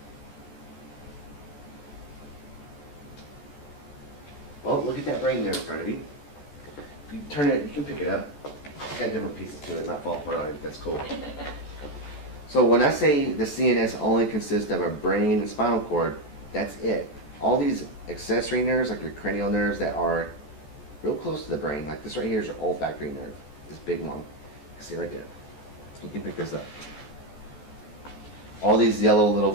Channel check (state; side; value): late; right; 14 ms